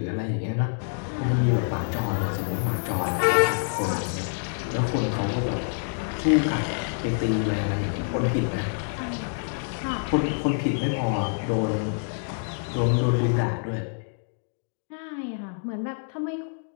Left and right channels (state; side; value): silent; right; digital silence